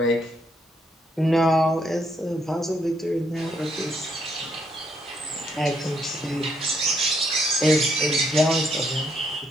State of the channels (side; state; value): both; normal; correlation 0.73